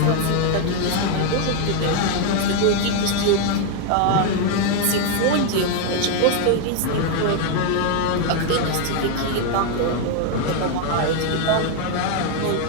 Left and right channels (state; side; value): different; both; correlation 0.01